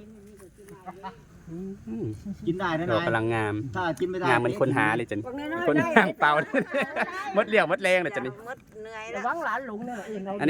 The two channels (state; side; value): identical; both; correlation 1.00